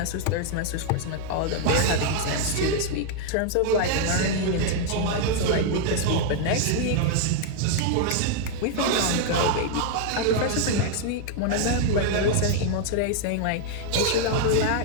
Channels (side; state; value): both; different; correlation 0.00